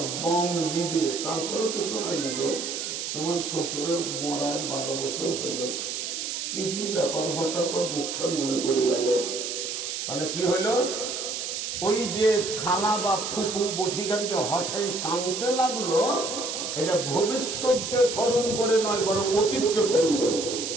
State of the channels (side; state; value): right; noise; hiss, 4 dB below the sound